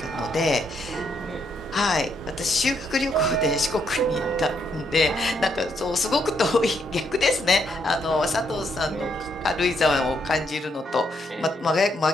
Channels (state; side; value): normal; both; correlation 0.75